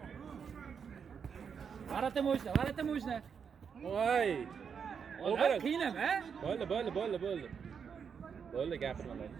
Varata mo'jna. Voy. Olim qiynama. Bo'ldi. Bo'ldi, gapirmalar.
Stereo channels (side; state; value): left; quieter; 6.7 dB